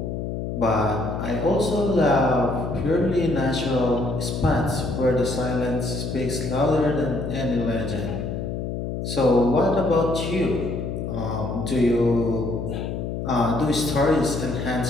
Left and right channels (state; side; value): noise; left; hum, 4 dB below the sound